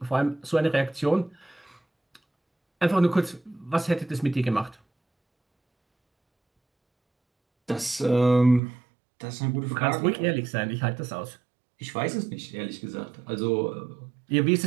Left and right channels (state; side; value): drops out; left; at 8.6 s